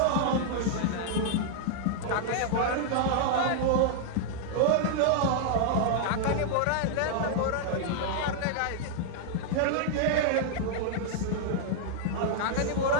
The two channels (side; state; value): both; different; correlation -0.01